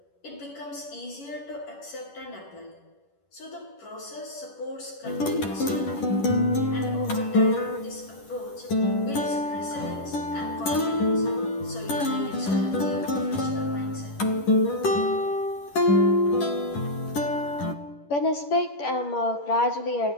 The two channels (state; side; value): late; right; 10 ms